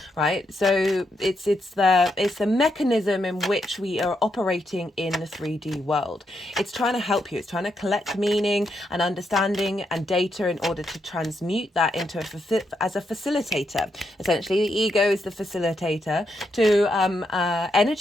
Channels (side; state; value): both; normal; correlation 0.80